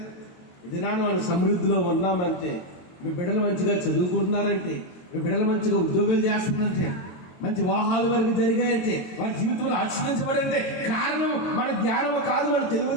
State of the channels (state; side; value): late; right; 23 ms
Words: ఇది మనం సమృద్ధిలో ఉన్నామంటే, మీ బిడ్డలు మంచిగా చదువుకుంటున్నారంటే, మీ బిడ్డలు మంచిగా ఉద్యోగాలు చేస్తున్నారంటే, మంచి వివాహాల వరకు జరిగాయంటే, వారి జీవితంలో ఆశీర్వదించబడంటే కారణం మన జ్ఞానం కాదు, మన